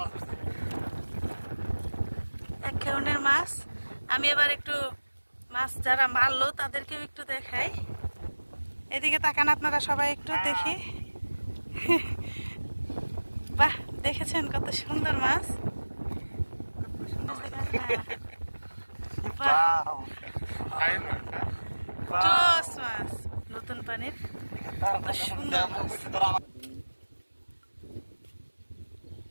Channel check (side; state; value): both; inverted; correlation -1.00